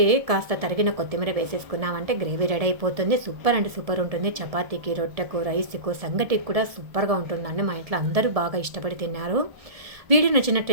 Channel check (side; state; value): left; late; 1.7 ms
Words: కాస్త తరిగిన కొత్తిమీర వేసేసుకున్నామంటే గ్రేవీ రెడీ అయిపోతుంది. సూపర్ అంటే సూపర్ ఉంటుంది. చపాతీకి, రొట్టెకు, రైస్కు, సంగటికి కూడా సూపర్గా ఉంటుందండి. మా ఇంట్లో అందరూ బాగా ఇష్టపడి తిన్నారు. వీడియో